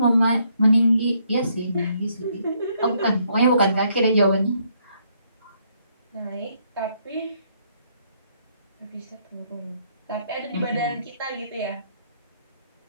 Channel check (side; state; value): both; inverted; correlation -0.71